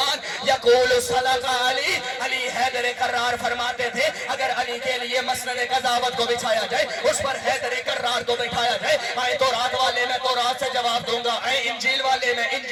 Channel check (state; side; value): identical; both; correlation 1.00